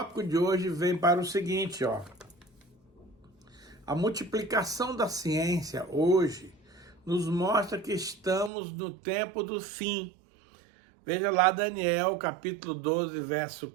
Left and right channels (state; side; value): drops out; left; at 8.5 s